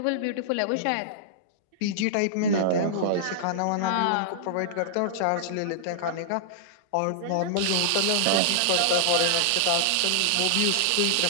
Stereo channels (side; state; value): both; different; correlation -0.02